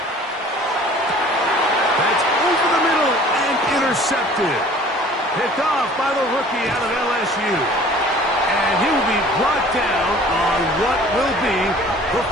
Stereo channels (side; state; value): both; normal; correlation 0.49